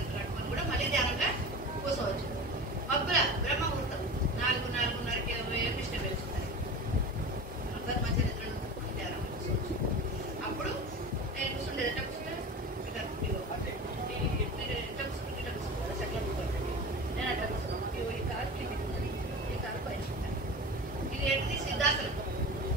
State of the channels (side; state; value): both; normal; correlation 0.32